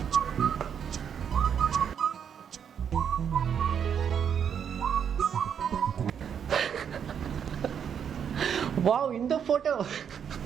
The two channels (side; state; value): left; quieter; 8.0 dB